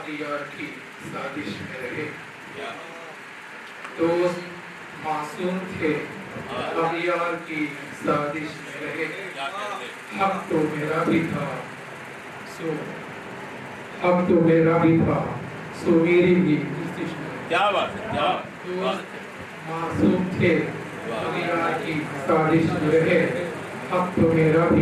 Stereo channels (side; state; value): both; identical; correlation 1.00